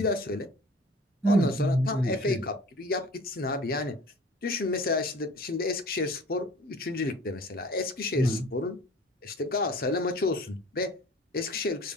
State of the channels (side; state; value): both; normal; correlation 0.44